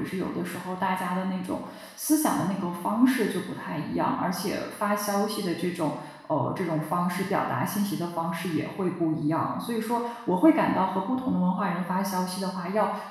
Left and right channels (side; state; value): both; identical; correlation 1.00